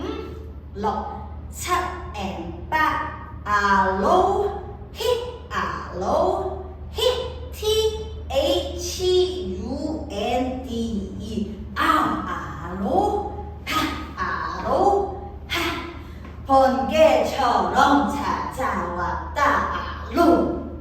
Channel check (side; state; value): both; identical; correlation 1.00